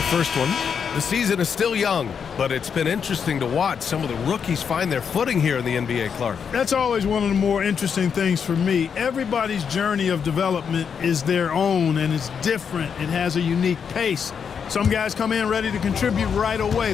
first one. The season is still young, but it's been interesting to watch some of the rookies find their footing here in the NBA, Clark. That's always one of the more interesting things for me. Everybody's journey of development is their own, and it's different. It has a unique pace. Some guys come in ready to contribute right away.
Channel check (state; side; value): quieter; right; 6.9 dB